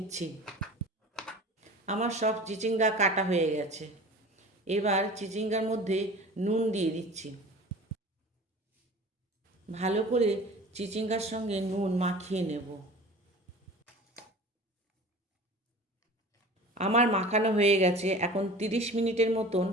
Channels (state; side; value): normal; both; correlation 0.40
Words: আমার সব চিচিঙ্গা কাটা হয়ে গেছে। এবার চিচিঙ্গার মধ্যে নুন দিয়ে দিচ্ছি। ভালো করে চিচিঙ্গার সঙ্গে নুন মাখিয়ে নেব। আমার মাখানো হয়ে গেছে। এখন 30 মিনিটের মতন